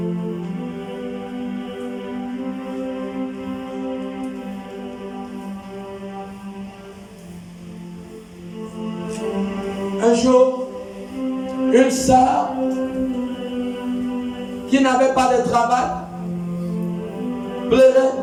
Un jour, une sœur qui n'avait pas de travail pleurait.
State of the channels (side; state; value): both; identical; correlation 1.00